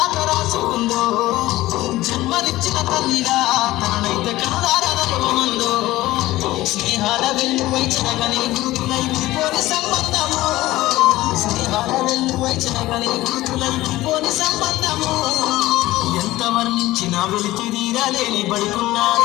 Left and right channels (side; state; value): right; quieter; 17.1 dB